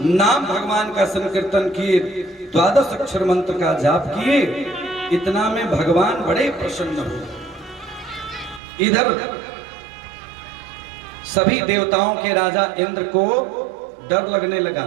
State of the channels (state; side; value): drops out; left; at 8.6 s